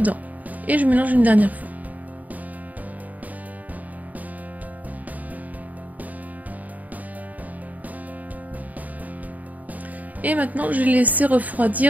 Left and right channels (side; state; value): left; late; 0.076 ms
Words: Et je mélange une dernière fois. Et maintenant, je vais laisser